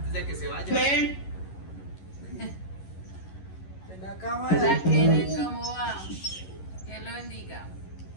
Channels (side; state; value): right; late; 11 ms